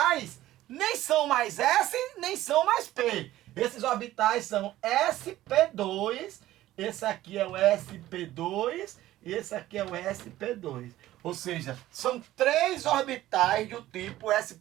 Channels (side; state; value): left; quieter; 14.9 dB